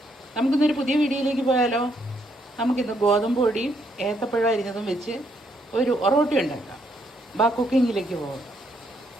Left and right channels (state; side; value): normal; both; correlation 0.74